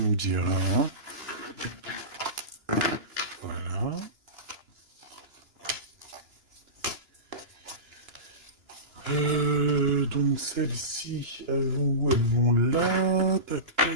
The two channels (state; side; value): late; left; 2.9 ms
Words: me diras, hein. Voilà. Donc celles-ci, elles vont où? Elles vont là, tac